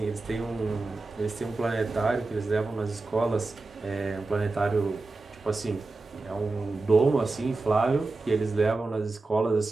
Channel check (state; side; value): quieter; left; 3.5 dB